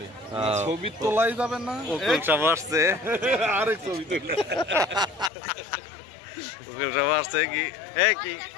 ছবি তোলাই যাবে না, উকিল সাহেব আসছে, আরেক ছবি তোলে। উকিল সাহেব আসছে কি এই কি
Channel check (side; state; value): right; drops out; at 5.3 s